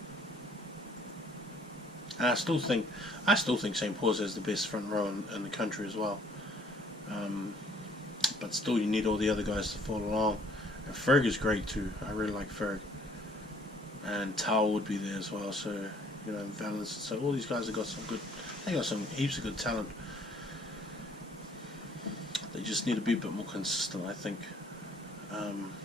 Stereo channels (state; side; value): normal; both; correlation 0.60